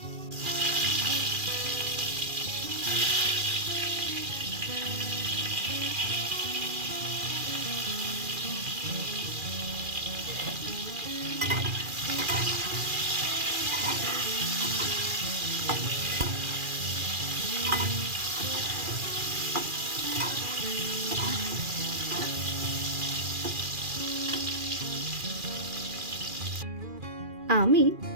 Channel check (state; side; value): late; left; 2.4 ms